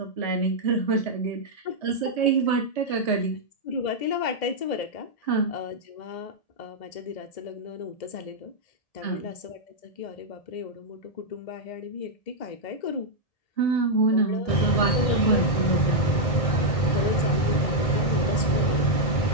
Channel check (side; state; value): right; late; 1.8 ms